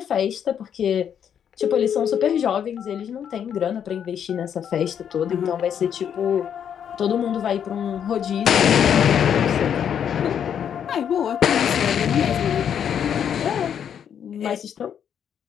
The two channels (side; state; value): right; quieter; 8.6 dB